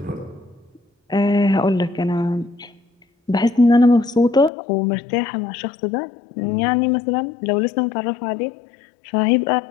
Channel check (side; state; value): right; drops out; at 4.5 s